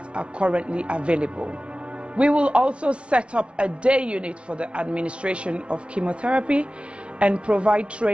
are currently available. We will also set up a day unit for the administration of chemotherapy and provide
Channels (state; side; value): late; left; 0.059 ms